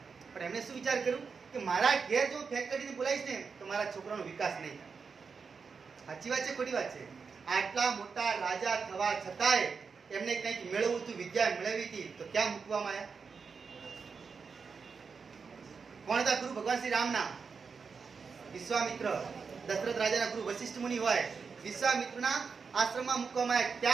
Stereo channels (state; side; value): quieter; left; 5.4 dB